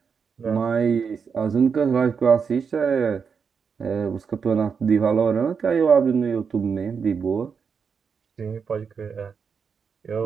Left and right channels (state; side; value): quieter; left; 6.1 dB